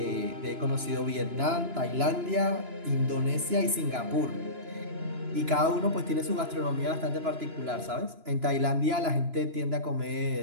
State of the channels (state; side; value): late; left; 2.9 ms